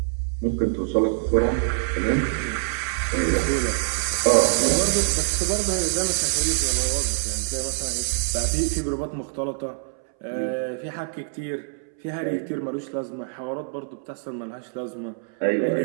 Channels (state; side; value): silent; left; 62 dB below the other